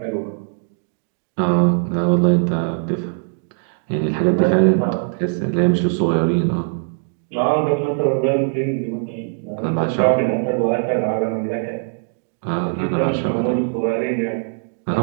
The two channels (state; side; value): silent; left; 63 dB below the other